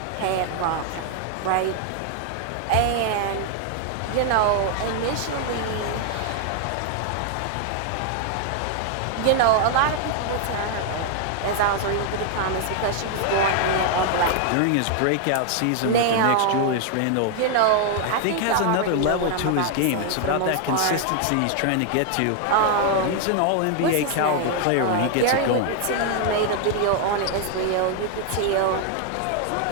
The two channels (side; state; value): both; different; correlation 0.00